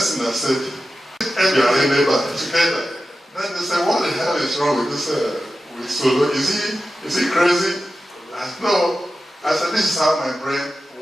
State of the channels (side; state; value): both; normal; correlation 0.93